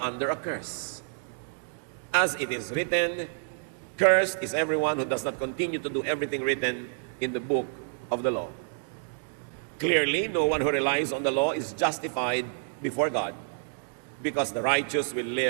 a curse. As it is written, Cursed is everyone who does not continue to do everything written in the book of the law. Clearly, no one who relies on the law is justified before God, because the righteous will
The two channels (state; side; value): silent; left; digital silence